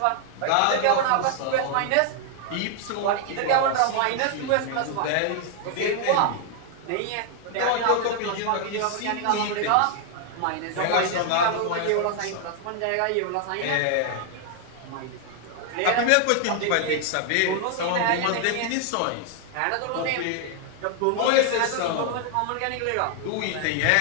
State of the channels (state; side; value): different; both; correlation 0.00